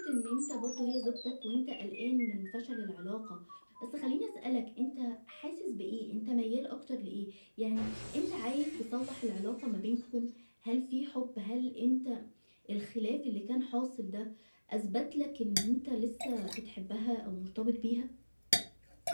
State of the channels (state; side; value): inverted; both; correlation -1.00